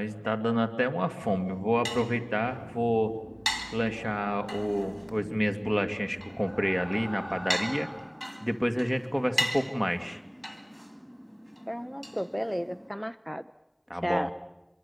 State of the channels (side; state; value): both; identical; correlation 1.00